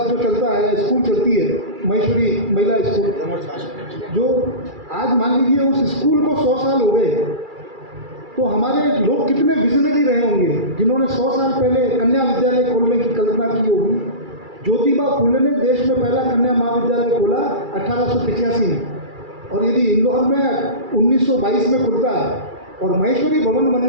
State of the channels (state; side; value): late; left; 2.3 ms